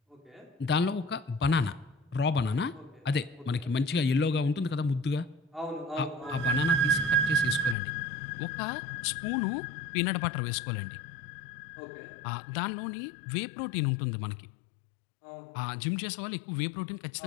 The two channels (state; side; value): drops out; right; at 7.8 s